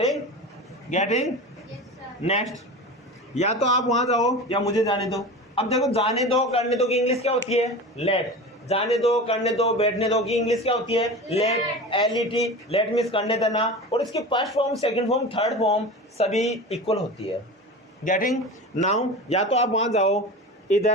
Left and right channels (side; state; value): both; normal; correlation 0.31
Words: Getting next. या तो आप वहां जाओ या मुझे जाने दो। अब देखो, जाने दो करने दो की इंग्लिश क्या होती है? लेट। जाने दो करने दो बैठने दो की इंग्लिश क्या होती है? लेट। LET, लेट मीन्स करने देना, और इसकी first form, second form, third form सभी इक्वल होती है। Getting now. या तो आप वहां जाओ,